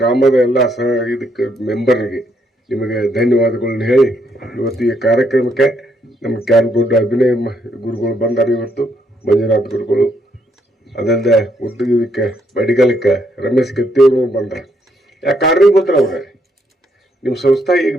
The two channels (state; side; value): normal; both; correlation 0.73